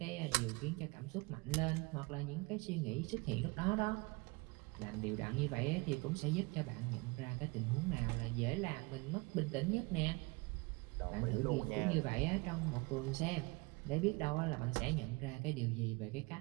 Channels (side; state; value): left; quieter; 26.5 dB